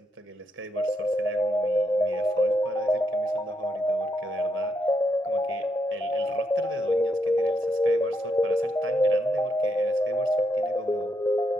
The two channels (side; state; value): both; normal; correlation 0.80